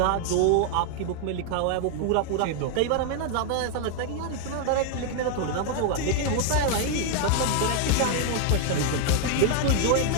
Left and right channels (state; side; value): different; both; correlation 0.00